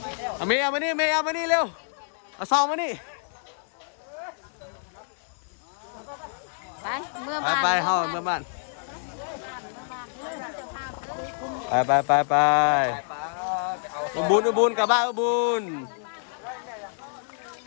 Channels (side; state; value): right; silent; digital silence